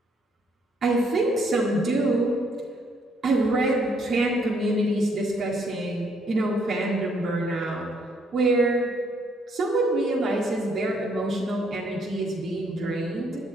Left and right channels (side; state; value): both; normal; correlation 0.69